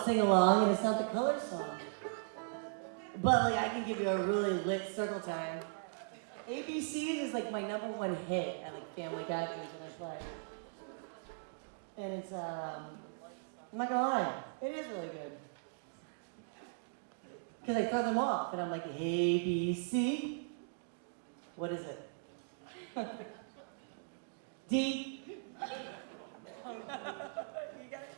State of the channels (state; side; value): silent; left; digital silence